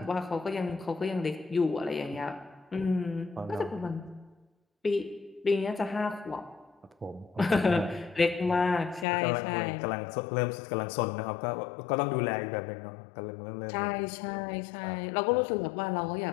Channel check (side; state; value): right; drops out; at 9.1 s